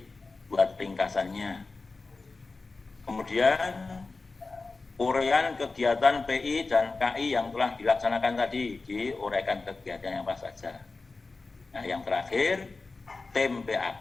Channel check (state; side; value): quieter; right; 3.8 dB